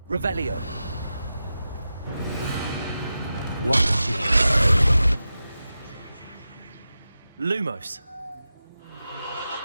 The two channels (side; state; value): both; inverted; correlation -0.92